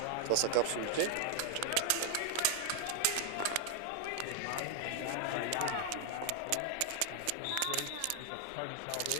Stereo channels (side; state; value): both; different; correlation 0.00